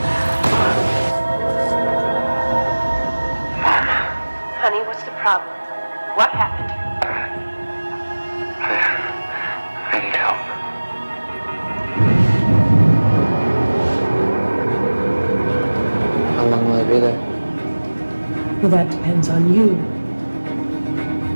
Mom. Honey, what's the problem? What happened? I need help. How long will I be there? Well, that depends on you.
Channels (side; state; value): both; inverted; correlation -1.00